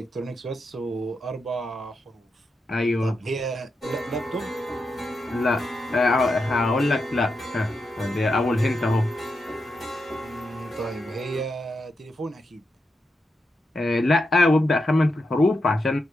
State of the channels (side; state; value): both; normal; correlation 0.86